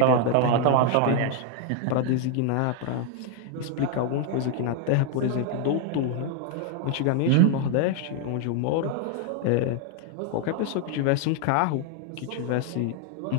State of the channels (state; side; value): different; both; correlation 0.00